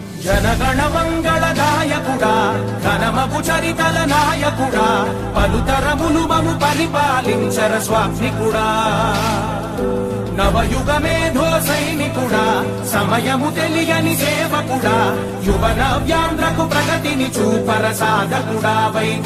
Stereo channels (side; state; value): both; identical; correlation 1.00